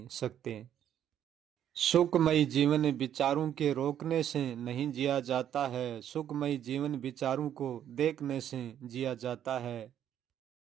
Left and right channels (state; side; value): quieter; left; 10.2 dB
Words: सकते। सुखमयी जीवन विचारों के रोकने से नहीं जिया जाता है, सुखमयी जीवन विचारों को देखने से जिया जाता है।